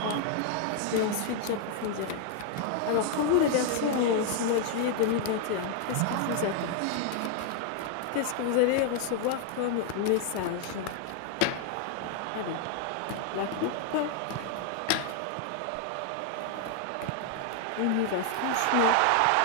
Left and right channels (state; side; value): different; both; correlation 0.00